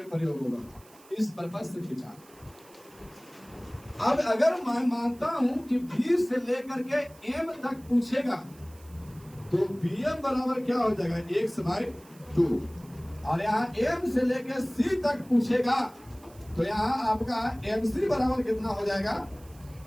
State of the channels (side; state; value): right; noise; hiss, 25 dB below the sound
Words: प्रयोग होगा, इस पर्पस से खींचा। अब अगर मैं मानता हूं कि B से लेकर के M तक पूछेगा तो BM बराबर क्या हो जाएगा, x/2। और यहाँ M से लेकर C तक पूछेगा तो यहाँ आपका MC बराबर कितना हो जाएगा,